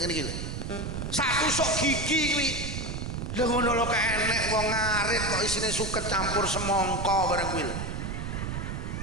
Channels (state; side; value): noise; right; rumble, 4 dB below the sound